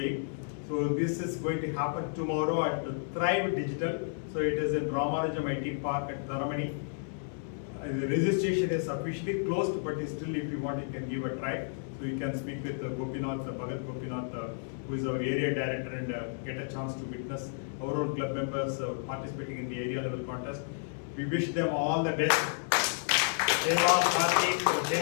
So this is going to happen tomorrow at Thrive Digital. So it is in Ramanujam IT Park at Dharamani. The registration is officially closed, but still if you want, you can give a try. So you can speak with Gopinath, Bharath Gopinath, who is our area director, and get a chance to witness our own club members participating in the area level contest. We wish them all the best. Deva, Karthick,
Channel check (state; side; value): silent; right; digital silence